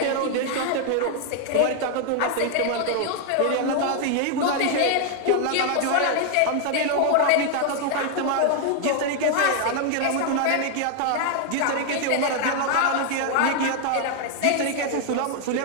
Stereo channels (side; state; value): both; different; correlation 0.00